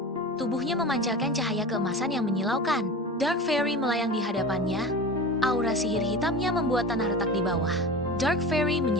Tubuhnya memancarkan cahaya keemasan yang menyilaukan. Dark Fairy melayang di hadapannya. Aura sihir hitamnya membuat tanah retak di bawah. Dark Fairy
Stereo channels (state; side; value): normal; both; correlation 0.32